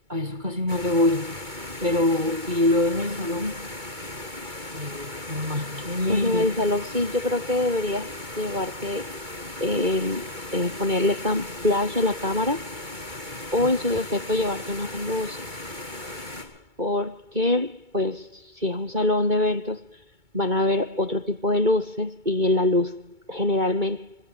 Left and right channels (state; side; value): late; left; 2.2 ms